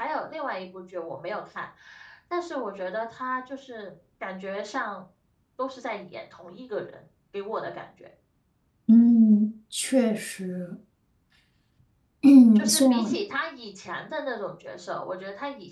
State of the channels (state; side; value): identical; both; correlation 1.00